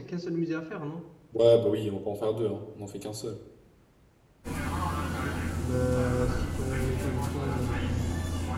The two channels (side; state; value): both; identical; correlation 1.00